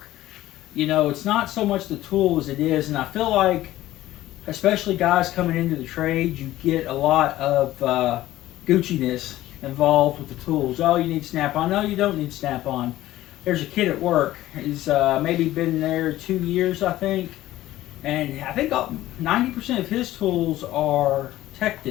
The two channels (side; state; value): right; quieter; 15.2 dB